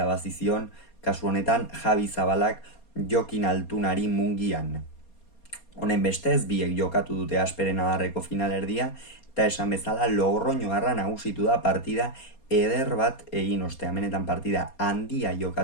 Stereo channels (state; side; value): late; right; 4.2 ms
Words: zion, kasu honetan Javi Zabalak Jokin Altunari Mungian. Honen bestez, biek jokatu dute asperen adarreko finalerdia, eta esan bezala Logroñoarra nagusitu da partida eder bat egin ostean. Benetan partida handia